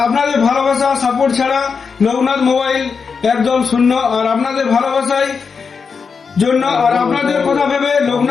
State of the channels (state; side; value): quieter; right; 5.5 dB